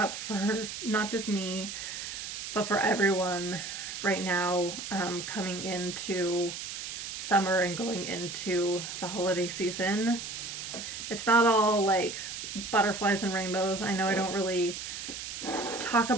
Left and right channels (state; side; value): noise; right; hiss, 7 dB below the sound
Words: for not just me, but for everyone right now, coming into summer and going into the holiday season. It's not all like butterflies and rainbows. I know I don't really talk